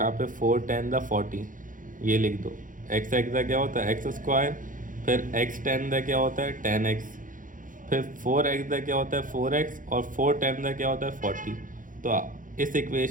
पे 4 10 द 40 ये लिख दो। एक्स एक्स का क्या होता है एक्स स्क्वायर, फिर एक्स 10 का क्या होता है 10x, फिर 4x का क्या होता है 4x, और 4 10 का क्या होता है 40। तो इस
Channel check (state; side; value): late; left; 0.38 ms